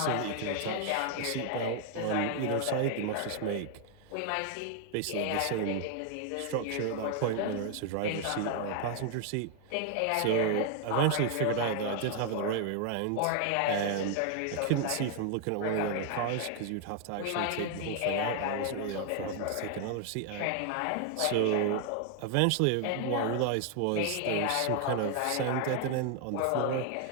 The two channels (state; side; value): different; both; correlation 0.00